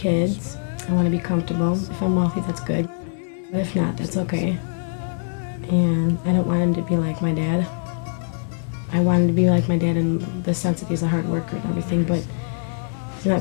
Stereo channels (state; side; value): silent; right; digital silence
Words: I want to be comfortable. If I'm wealthy, that's good. But if not, that's okay. And I don't want him to be like my dad. I want him to be like my dad in the sense that he's a hard worker and everything, but he's not